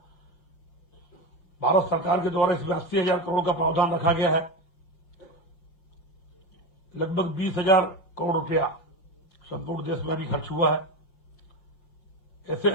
भारत सरकार के द्वारा इसमें 80,000 करोड़ का प्रावधान रखा गया है। लगभग 20,000 करोड़ रुपया संपूर्ण देश में अभी खर्च हुआ है। ऐसे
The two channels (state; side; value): late; right; 5.8 ms